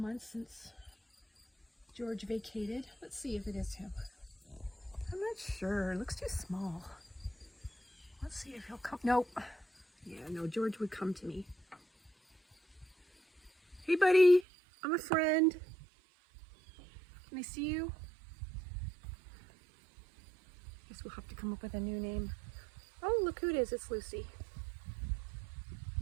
since George vacated. Let's see if it is him. I'm not sure. It looks too small. Let's see if he'll come. Nope. Yeah, no, George would come to me. Hey, buddy. I'm a friend. Can I see you? Guess we'll have to come up with a new name. Oh, look who it is. It's Lucy.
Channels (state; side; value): drops out; left; at 14.5 s